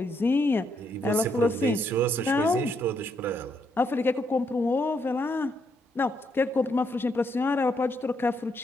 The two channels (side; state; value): both; normal; correlation 0.76